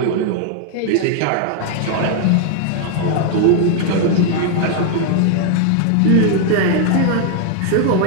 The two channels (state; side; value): different; both; correlation 0.00